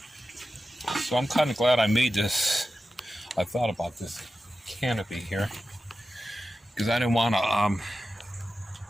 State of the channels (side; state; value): both; normal; correlation 0.93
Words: So I'm kind of glad I made this. I thought about this canopy here because I didn't want to.